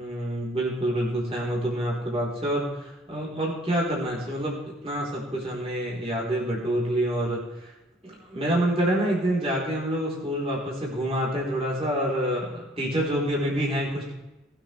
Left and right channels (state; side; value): normal; both; correlation 0.58